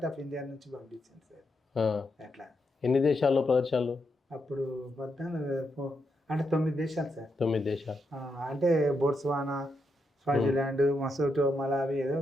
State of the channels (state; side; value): normal; both; correlation 0.82